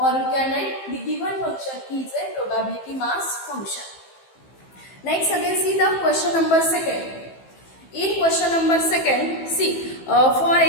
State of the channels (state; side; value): late; right; 15 ms